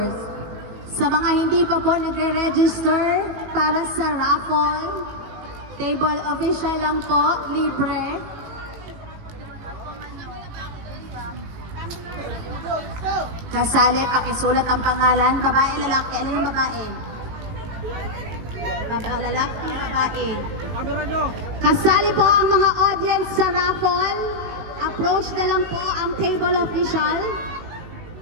Sa mga hindi pa po nagre-register para sa raffle, table official lang po, libre. Kasali, pakisulat ang pangalan. Babae, lalaki. Alin ang babae? Babae, lalaki, babae. Camera nyo. Kasali po ang mga audience sa raffle. Approach na lang po ang table official.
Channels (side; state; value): left; late; 19 ms